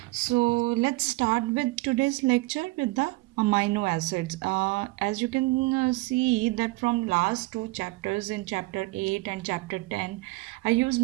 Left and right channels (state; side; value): quieter; left; 22.0 dB